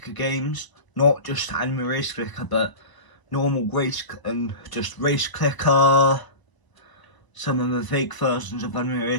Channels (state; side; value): late; right; 1.0 ms